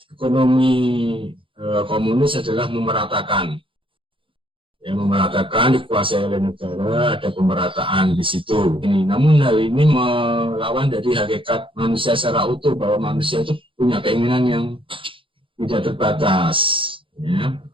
ekonomi komunis adalah memeratakan. Yang memeratakan dikuasai oleh negara, ada pemerataan di situ. Namun hal ini melawan dari hakikat manusia secara utuh, bahwa manusia itu punya keinginan yang tidak terbatas. Ya.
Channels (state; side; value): late; left; 0.25 ms